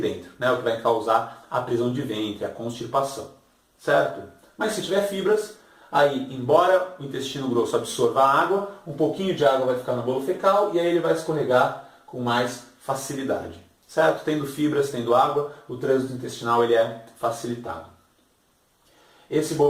né? O que vai causar a prisão de ventre, a constipação, certo? Mas se tiver fibras, aí, embora o intestino grosso absorva a água, um pouquinho de água vai ficar no bolo fecal e aí ele vai escorregar com mais facilidade, certo? Tendo fibras, tendo água, o trânsito intestinal ele é facilitado. Esse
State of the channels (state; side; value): identical; both; correlation 1.00